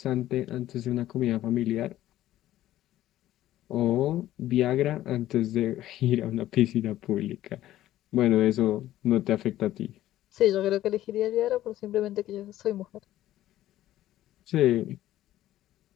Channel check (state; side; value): quieter; right; 13.9 dB